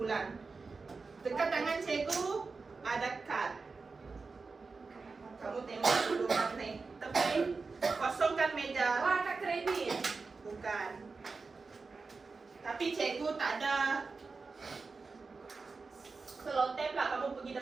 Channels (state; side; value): quieter; left; 4.3 dB